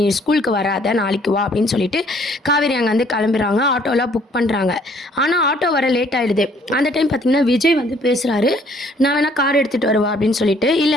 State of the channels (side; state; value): both; normal; correlation 0.61